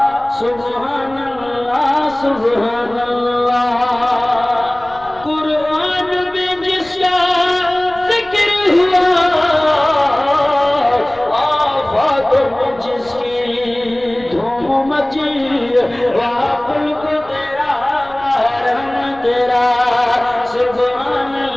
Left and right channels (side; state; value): left; noise; rumble, 24 dB below the sound